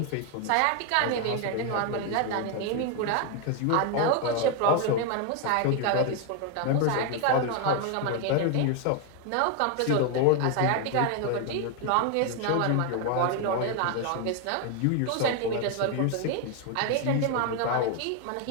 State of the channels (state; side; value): different; both; correlation 0.01